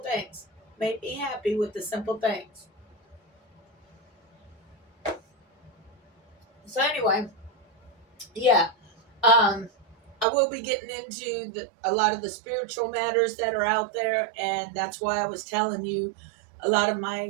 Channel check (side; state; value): left; drops out; at 10.2 s